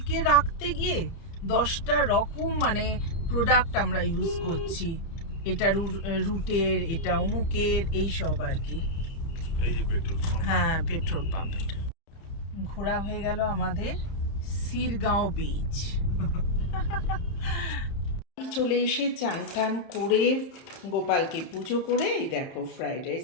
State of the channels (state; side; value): late; right; 30 ms